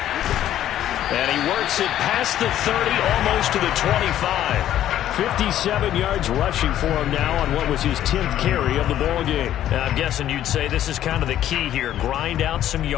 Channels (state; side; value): quieter; right; 11.9 dB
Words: he works it past the 30, almost to the 25. 57 yards rushing for him now on what was his 10th carry of the ball game. Now, I'm guessing you'd say this is kind of the key here. Grind out some